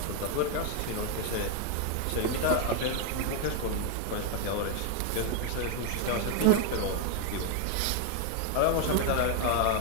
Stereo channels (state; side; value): different; both; correlation 0.00